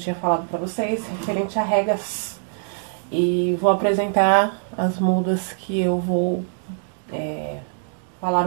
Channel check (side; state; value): left; silent; digital silence